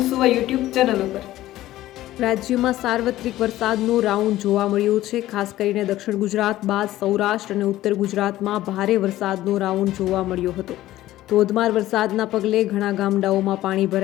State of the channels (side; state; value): right; quieter; 15.0 dB